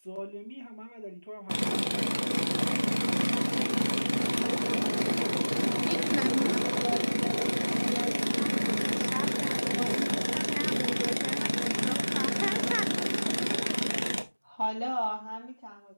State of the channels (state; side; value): inverted; both; correlation -1.00